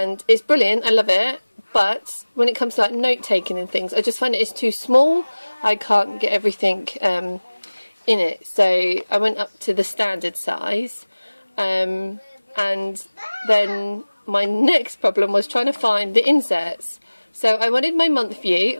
it's brilliant. I love it. But when it comes to like note taking and things, I just find it is too small. I can't get everything in it, so I went up to the standard size, and then my next problem was trying to find the inserts. So I wanted my month view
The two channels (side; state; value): both; inverted; correlation -1.00